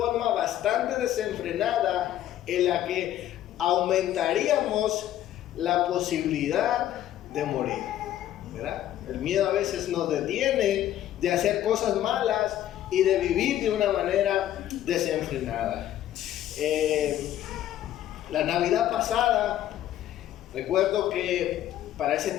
bastante desenfrenada, en la que aumentaríamos la posibilidad de morir, ¿verdad? El miedo a veces nos detiene de hacer cosas malas y de vivir de una manera desenfrenada. La Navidad pasada, recuerdo que para ese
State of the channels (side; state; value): right; quieter; 12.3 dB